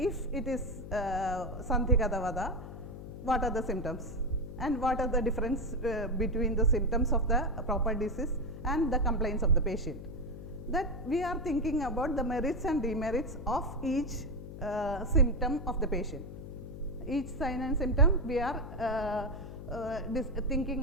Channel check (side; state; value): left; noise; hum, 11 dB below the sound